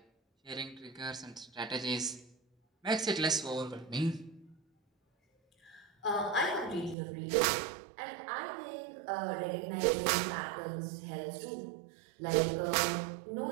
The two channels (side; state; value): left; drops out; at 7.0 s